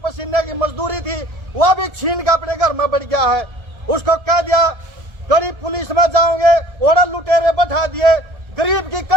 पसीने की मजदूरी थी, वह भी छीन के अपने घर में बढ़ गया है। उसको कह दिया गरीब पुलिस में जाओगे, ओढ़ा लुटेरे बैठा दिए। गरीब की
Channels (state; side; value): late; left; 1.3 ms